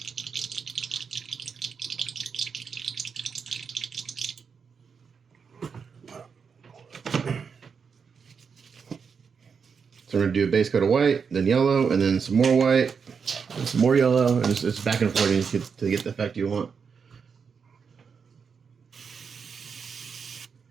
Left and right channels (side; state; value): left; quieter; 6.0 dB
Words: So we're going to do a base coat of white, then yellow, and then some more white, and some more yellow, and it's back and forth to get the effect you want.